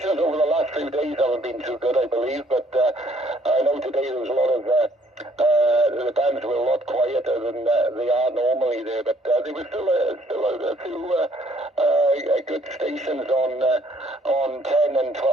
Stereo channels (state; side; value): normal; both; correlation 0.63